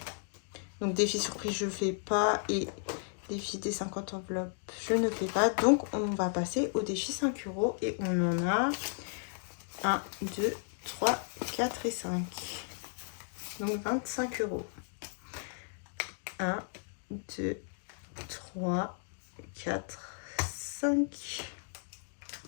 Donc défi surprise, je fais pas. Et défi des 50 enveloppes, je ne fais pas. Donc on va passer au défi 5 € et on en a 1, 2, 3, 4 et 5. Donc 25 €. 1, 2, 3, 4, 5.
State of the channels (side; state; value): right; silent; digital silence